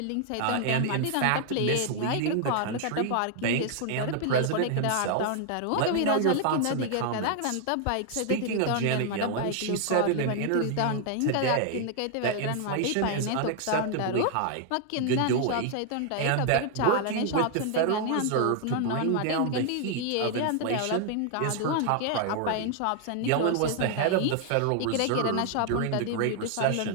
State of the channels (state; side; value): different; both; correlation 0.00